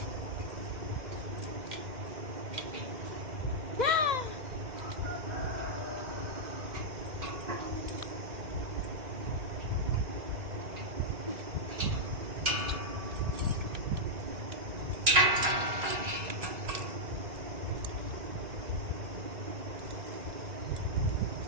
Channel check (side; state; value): left; late; 2.0 ms